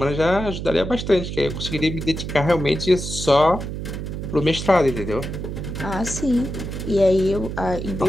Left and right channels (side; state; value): right; noise; hum, 6 dB below the sound